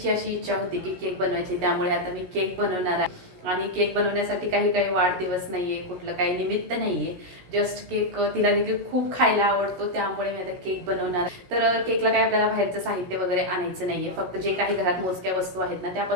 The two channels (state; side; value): late; left; 16 ms